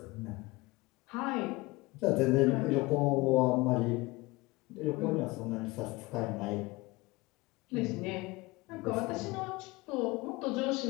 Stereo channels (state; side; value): quieter; right; 22.4 dB